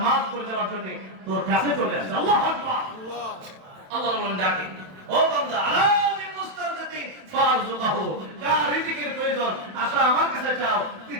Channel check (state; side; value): late; left; 27 ms